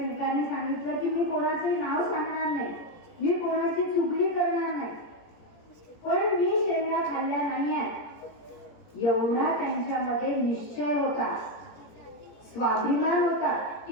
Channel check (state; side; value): late; right; 17 ms